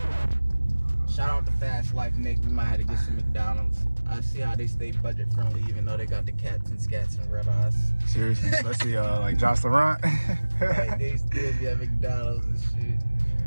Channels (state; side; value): inverted; both; correlation -1.00